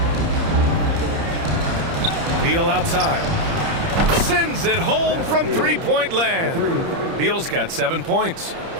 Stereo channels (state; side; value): late; left; 30 ms